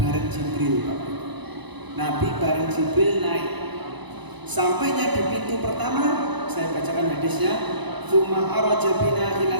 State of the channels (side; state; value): left; late; 1.0 ms